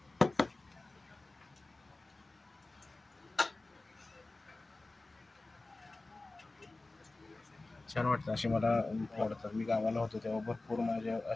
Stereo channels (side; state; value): right; quieter; 3.1 dB